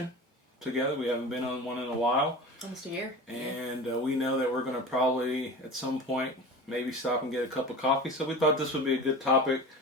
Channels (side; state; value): both; normal; correlation 0.33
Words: together. We haven't been on one in a while. Almost a year. And we know that we're going to probably, at some point, maybe stop and get a cup of coffee. So we thought this would be a good topic